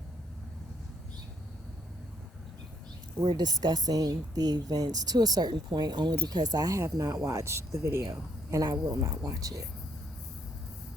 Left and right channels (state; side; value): normal; both; correlation 0.69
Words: we're discussing the events to a certain point only because I have not watched the video and I will not watch it.